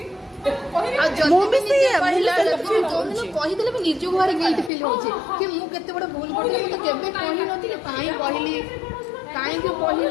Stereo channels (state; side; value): drops out; right; at 4.7 s